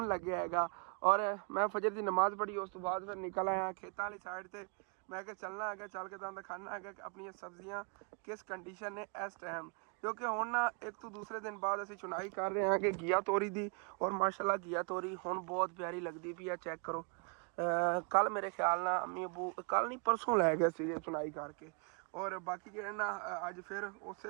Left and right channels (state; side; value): quieter; left; 37.0 dB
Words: लग्या हैगा। और मैं फजर की नमाज़ पढ़ी, उस तो बाद फिर निकल आया खेतों वाली साइड से। मैं क्या चलना है, चल के तुहानू दिखाना है कि अपनी सब्जियां किस कंडीशन ने इस टाइम, क्योंकि हुण ना एक तो दूसरे दिन बाद असीं चुनाई कर रहे हैं कि घिया तोरी दी। और माशाल्लाह घिया तोरी हुण बहुत प्यारी लगती पई है। चैक करो, कल मेरे ख्याल ना अम्मी अबू कल नहीं परसों लै गए सी चुनाई करके। और बाकी जो ना अज फिर उस